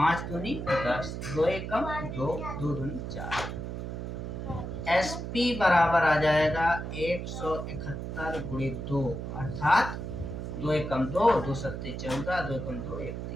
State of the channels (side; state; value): right; noise; hum, 6 dB below the sound